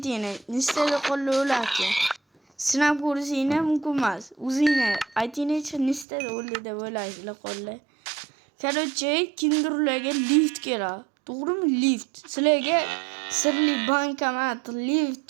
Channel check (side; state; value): left; drops out; at 6.1 s